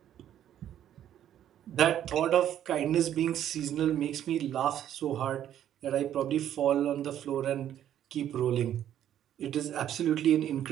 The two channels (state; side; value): quieter; left; 10.9 dB